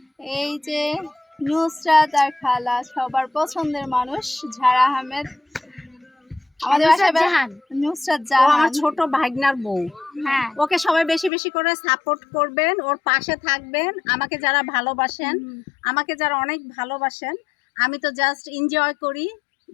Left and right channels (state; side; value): drops out; right; at 11.3 s